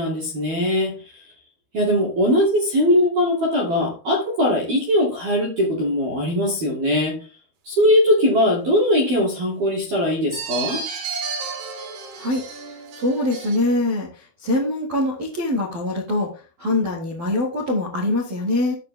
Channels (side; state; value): left; late; 12 ms